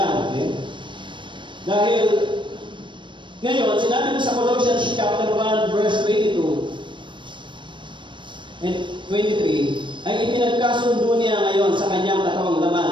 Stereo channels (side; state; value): left; late; 0.23 ms